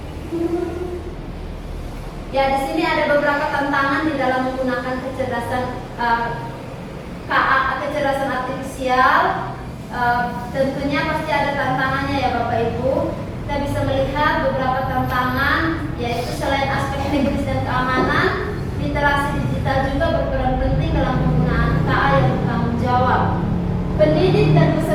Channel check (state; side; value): identical; both; correlation 1.00